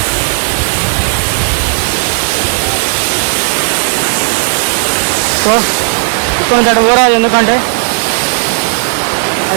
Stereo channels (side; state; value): left; silent; digital silence